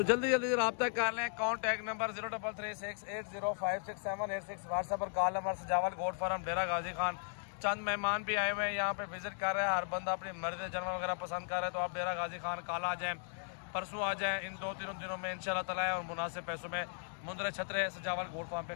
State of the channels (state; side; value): silent; right; digital silence